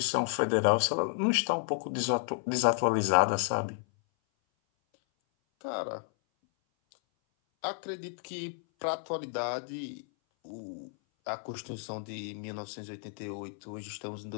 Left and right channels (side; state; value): right; silent; 57 dB below the other